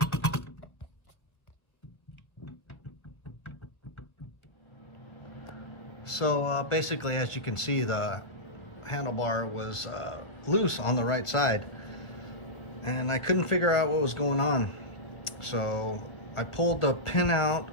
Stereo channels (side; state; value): right; late; 1.1 ms